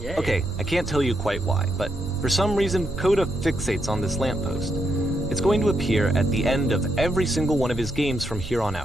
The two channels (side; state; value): right; noise; rumble, 11 dB below the sound